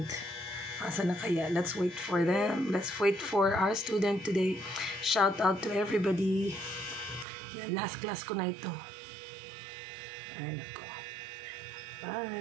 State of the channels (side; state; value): left; drops out; at 7.2 s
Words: Asa na kaya? Let's wait for them. Let's wait for our student today. Shout out to everybody. Yan, last class ko na ito. Ay, nako.